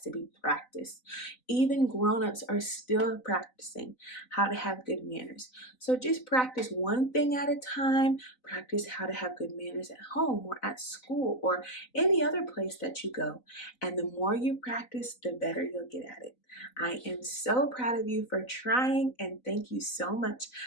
be practiced. Even grown-ups are still practicing how to have good manners. So just practice one thing at a time. Practice how to have good manners at home or at school or any other place that you go. And the more you practice, the better you'll get at it. I am so proud of you for trying, and thank you so much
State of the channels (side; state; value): right; late; 4.0 ms